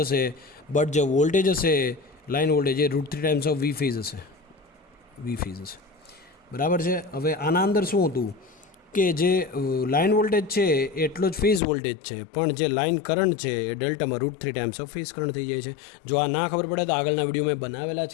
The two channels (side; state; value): right; drops out; at 11.6 s